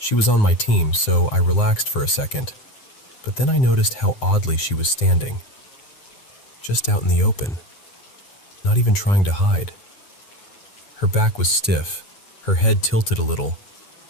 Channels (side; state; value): right; late; 9.3 ms